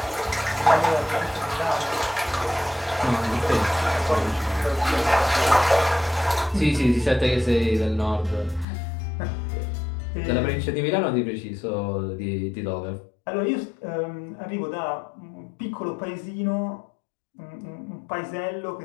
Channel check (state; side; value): drops out; right; at 8.7 s